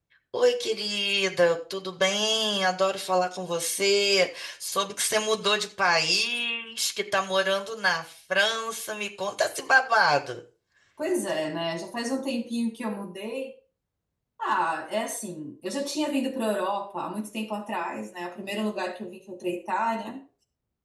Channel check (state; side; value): identical; both; correlation 1.00